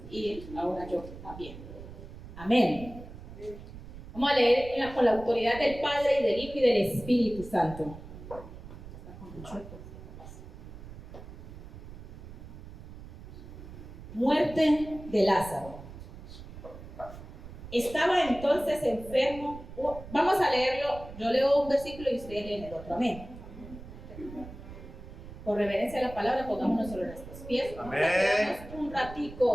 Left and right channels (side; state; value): right; noise; rumble, 14 dB below the sound